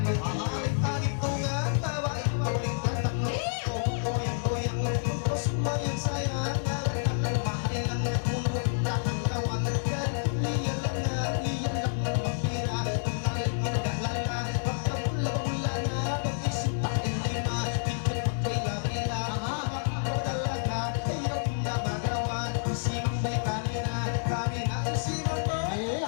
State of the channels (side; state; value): right; silent; 58 dB below the other